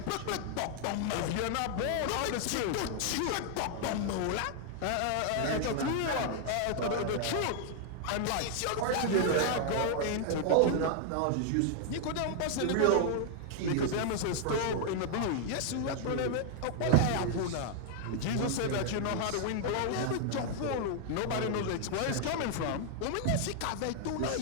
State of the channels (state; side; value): different; both; correlation 0.00